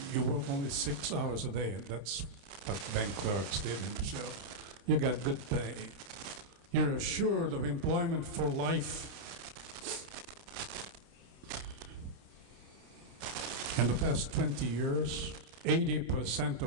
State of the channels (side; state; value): left; late; 30 ms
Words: You work only 6 hours a day, and that's what bank clerks did in Brazil. You got good pay. You're assured of employment for life. In the past 20 years, 80%